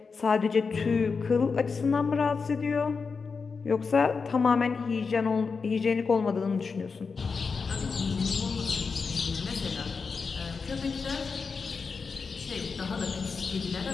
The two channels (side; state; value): right; quieter; 5.0 dB